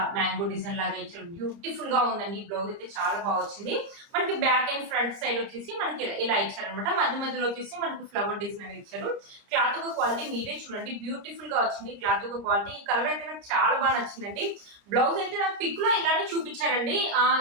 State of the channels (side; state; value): left; late; 30 ms